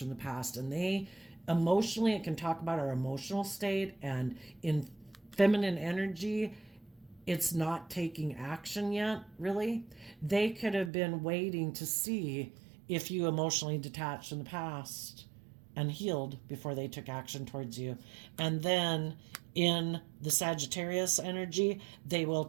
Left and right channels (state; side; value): drops out; left; at 10.9 s